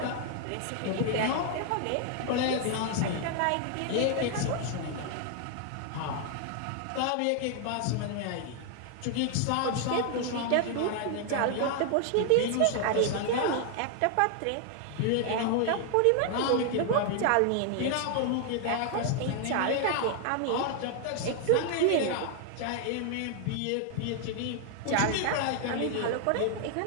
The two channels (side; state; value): both; different; correlation 0.00